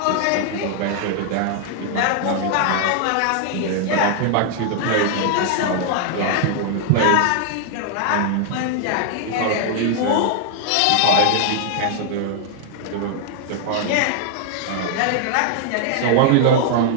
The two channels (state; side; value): different; both; correlation 0.00